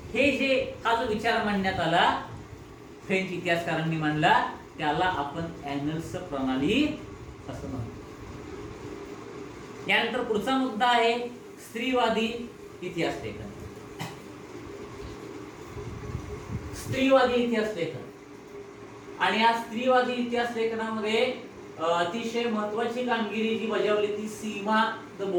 हे जे हा जो विचार मांडण्यात आला, फ्रेंच इतिहासकारांनी मांडला, त्याला आपण ॲनल्स प्रणाली असं म्हणतो. यानंतर पुढचा मुद्दा आहे स्त्रीवादी इतिहास लेखन. स्त्रीवादी इतिहास लेखन आणि या स्त्रीवादी इतिहास लेखनामध्ये अतिशय महत्वाची कामगिरी जी बजावली ती सीमा द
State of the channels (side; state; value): both; identical; correlation 1.00